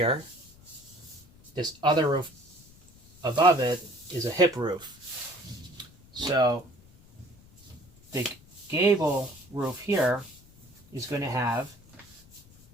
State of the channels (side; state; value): left; noise; rumble, 25 dB below the sound